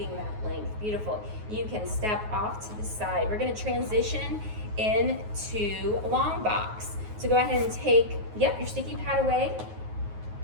that length. Beautiful. You can step off to the side. We're going to transition into long box. So go ahead and take, your sticky pad away.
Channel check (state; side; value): late; left; 9.4 ms